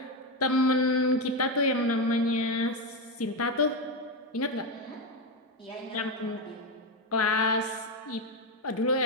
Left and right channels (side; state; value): both; normal; correlation 0.10